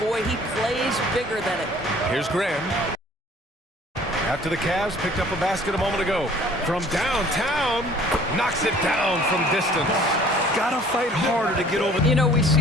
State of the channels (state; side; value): normal; both; correlation 0.53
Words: he plays bigger than it. Here's Graham. After the Cavs picked up a basket a moment ago. From downtown, knocks it down from distance. Gotta fight harder to get over. You know, we